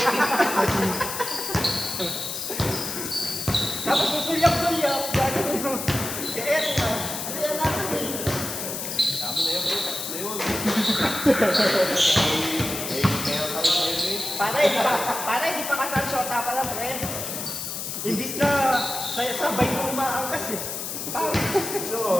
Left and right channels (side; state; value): left; noise; hiss, 5 dB below the sound